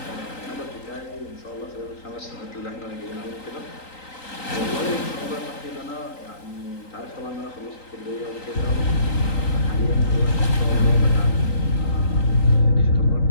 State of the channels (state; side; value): late; right; 3.9 ms